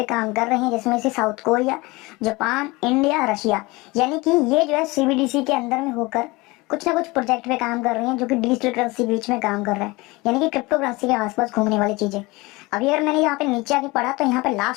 काम कर रही हैं, जिसमें से south Korea, Japan, India, Russia, यानी कि ये जो है सीबीडीसी के अंदर में होकर कुछ ना कुछ प्रोजेक्ट पे काम कर रही हैं, जो कि डिजिटल करेंसी के बीच में काम कर रहा है, यानी कि क्रिप्टो करेंसी के आसपास घूमने वाली चीजें। अभी अगर मैंने यहाँ पे नीचे आके पढ़ा तो यहाँ पे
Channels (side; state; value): right; quieter; 23.2 dB